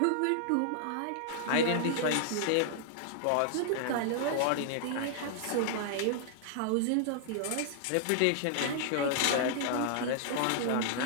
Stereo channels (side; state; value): both; different; correlation -0.01